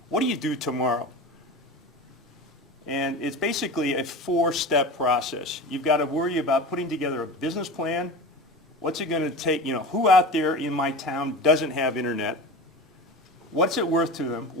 what do you do tomorrow? And it's basically a 4-step process. You've got to worry about putting together a business plan. What's it going to take? Who out there in my town doesn't have internet? What's it worth to them?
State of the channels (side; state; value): both; normal; correlation 0.31